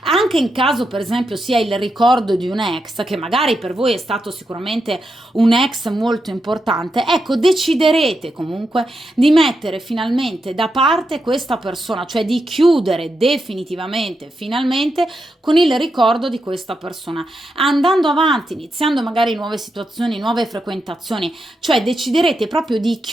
Anche in caso, per esempio, sia il ricordo di un ex, che magari per voi è stato sicuramente un ex molto importante, ecco, deciderete comunque di mettere finalmente da parte questa persona, cioè di chiudere definitivamente, finalmente, con il ricordo di questa persona, andando avanti, iniziando magari nuove situazioni, nuove frequentazioni, cioè deciderete proprio di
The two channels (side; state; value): both; normal; correlation 0.85